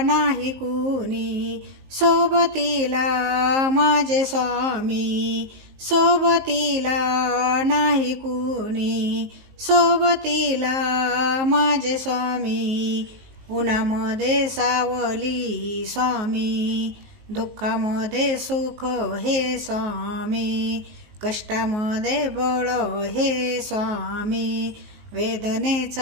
नाही कुणी, सोबतीला माझे स्वामी. सोबतीला नाही कुणी, सोबतीला माझे स्वामी. उन्हामध्ये सावली स्वामी, दुःखामध्ये सुख हे स्वामी. कष्टामध्ये बळ हे स्वामी,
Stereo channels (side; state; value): left; late; 19 ms